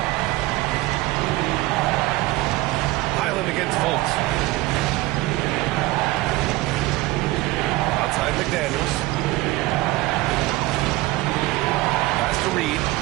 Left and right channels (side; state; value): left; quieter; 19.3 dB